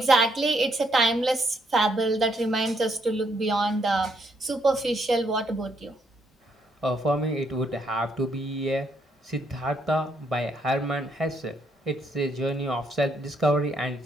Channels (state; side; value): normal; both; correlation 0.73